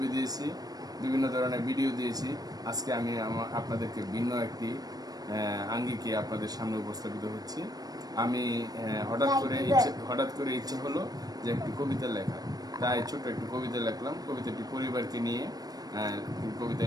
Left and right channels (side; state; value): left; late; 0.19 ms